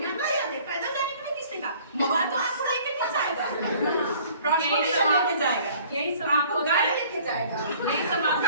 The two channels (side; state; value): both; inverted; correlation -0.53